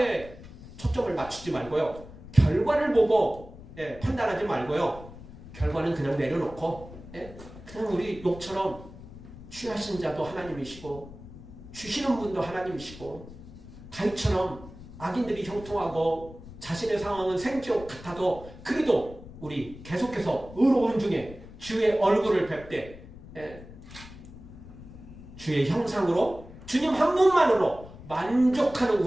초점을 맞추지 말고요. 결과를 보고 판단하지 말고요. 결과는 그냥 내려놓고 그냥 우리 욥처럼 취하신 자도 하나님이시고 주시는 분도 하나님이시고, 다윗처럼 악인들이 형통하고 자신의 상황은 생지옥 같아도 그래도 우리 계속해서 의로운 중에 주의 얼굴을 뵙되 주의 형상으로 주님 한 분만으로 만족하는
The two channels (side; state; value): left; noise; rumble, 16 dB below the sound